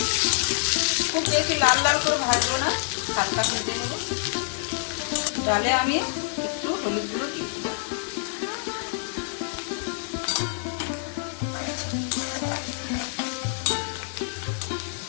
খুব বেশি লাল লাল করে ভাজবো না, হালকা ভেজে নেব। ডালে আমি একটু হলুদ গুঁড়ো দিয়েছিলাম।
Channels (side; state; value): right; silent; 57 dB below the other